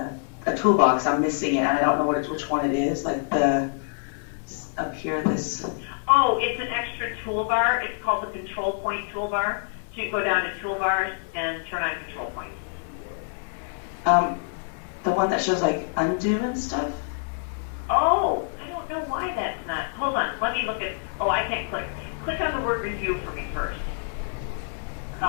toolbox. I'm missing it and I don't know which one it is. Like up here this. Oh, it's an extra toolbar. It's called the control point toolbar. So you go down to toolbars and turn on control points. The one that shows like undo and stuff? Oh, I don't know why that's not. Hold on, let me look at. Oh, I can't click. Click on the word review for me first.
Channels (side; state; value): right; silent; 61 dB below the other